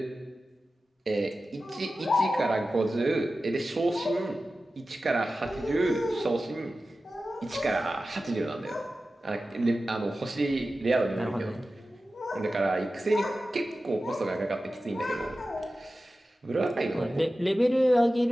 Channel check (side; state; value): both; normal; correlation 0.94